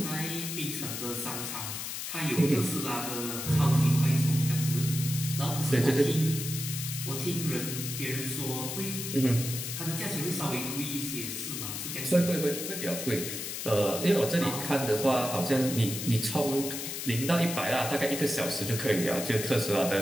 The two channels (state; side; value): noise; left; hiss, 5 dB below the sound